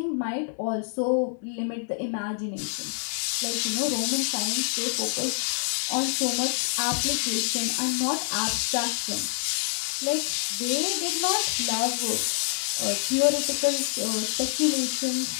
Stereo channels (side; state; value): right; silent; digital silence